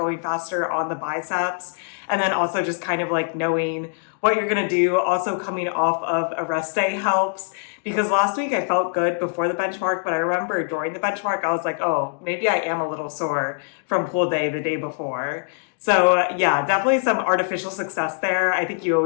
faster on the biceps, and then also just kind of like knowing what you're gonna do. Also coming off of a rest day helps, because last week I felt good before the benchmark, but I remember during the benchmark I was like, oh, maybe I am a little sore from pull day the day before. So yeah, definitely some artificial success there. I think you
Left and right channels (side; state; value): right; silent; digital silence